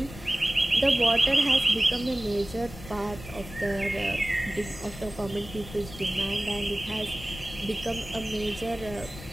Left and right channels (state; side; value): noise; left; rumble, 14 dB below the sound